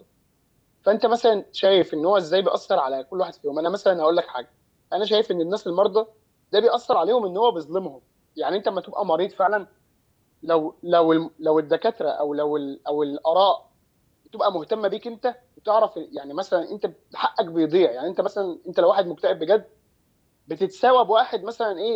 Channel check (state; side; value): identical; both; correlation 1.00